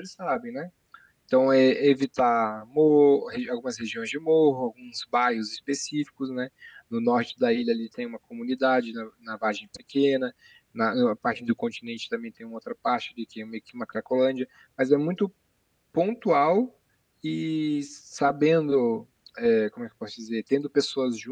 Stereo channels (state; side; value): identical; both; correlation 1.00